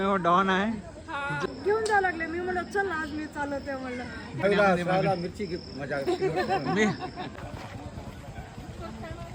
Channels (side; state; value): both; identical; correlation 1.00